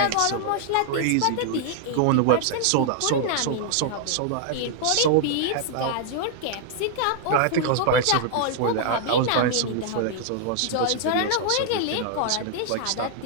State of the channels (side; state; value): both; different; correlation -0.01